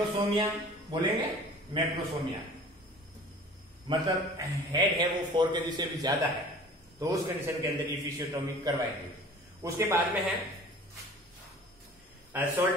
बोलेंगे। मैक्रोसोमिया मतलब हेड है वो 4 kg से भी ज्यादा है, तो उस कंडीशन के अंदर इफिशियोटोमी करवाएंगे। उसके बाद में है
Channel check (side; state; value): both; normal; correlation 0.45